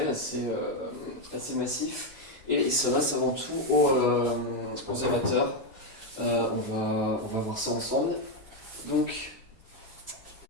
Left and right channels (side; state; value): both; normal; correlation 0.05